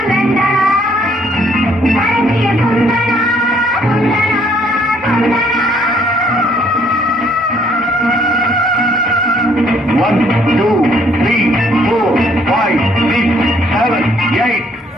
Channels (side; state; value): both; normal; correlation 0.65